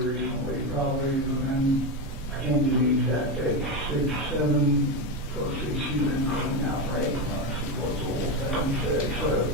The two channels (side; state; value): both; normal; correlation 0.13